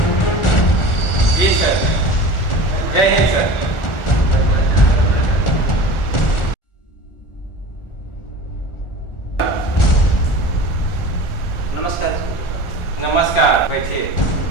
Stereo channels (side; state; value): right; late; 1.4 ms